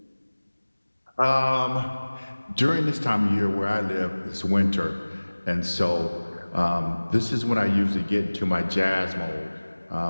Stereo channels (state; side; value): inverted; both; correlation -1.00